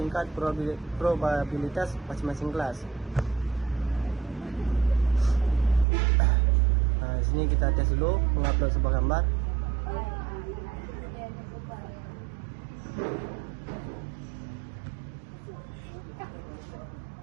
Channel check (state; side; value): drops out; left; at 5.9 s